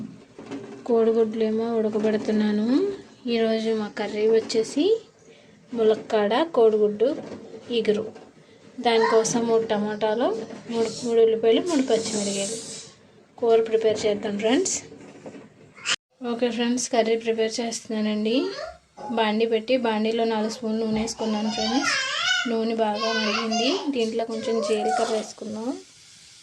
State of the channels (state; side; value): identical; both; correlation 1.00